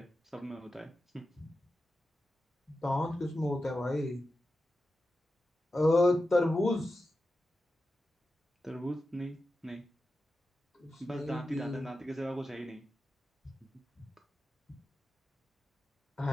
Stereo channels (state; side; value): normal; both; correlation 0.91